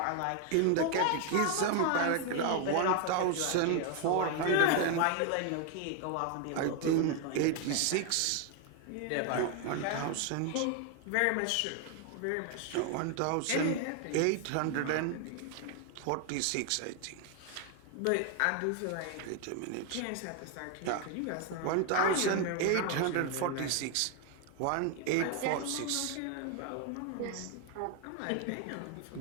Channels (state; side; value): different; both; correlation 0.01